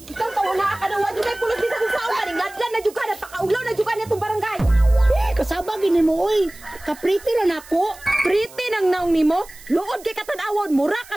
Ikaw tawo na ka na wa jud kay pulos bisan sa ulan, ngadlan na jud ka napakaulaw na jud ka nitong barangay. Kasaba gini mo oy. Kapriti ra nako. Pretty nang naong nimo, luod kay katan-awon, mura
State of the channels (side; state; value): right; noise; hiss, 21 dB below the sound